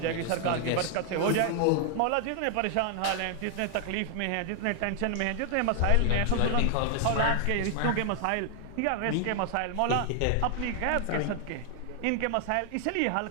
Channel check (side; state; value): both; different; correlation 0.00